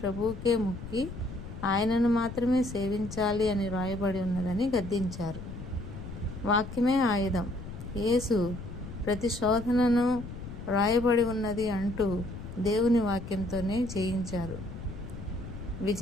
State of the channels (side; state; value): left; noise; rumble, 10 dB below the sound